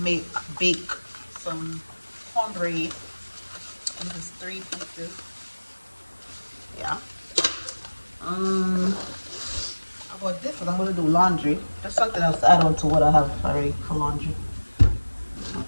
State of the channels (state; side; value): inverted; both; correlation -1.00